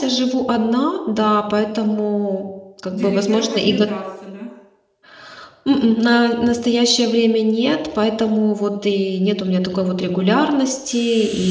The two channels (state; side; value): identical; both; correlation 1.00